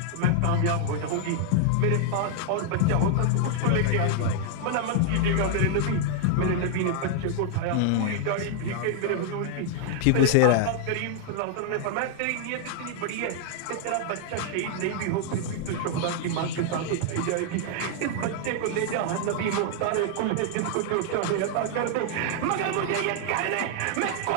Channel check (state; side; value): different; both; correlation 0.00